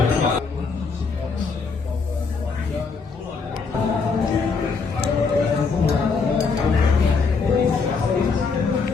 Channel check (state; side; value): quieter; right; 4.9 dB